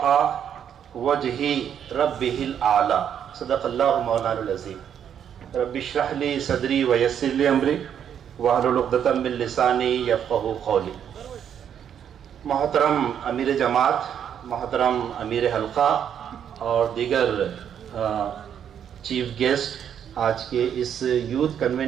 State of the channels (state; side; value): quieter; left; 8.8 dB